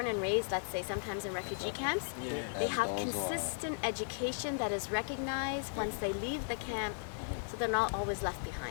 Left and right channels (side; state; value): right; silent; digital silence